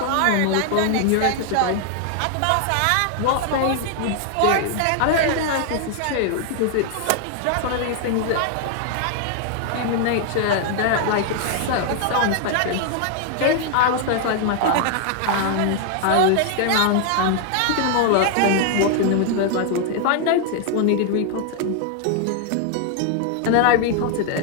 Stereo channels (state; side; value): different; both; correlation 0.00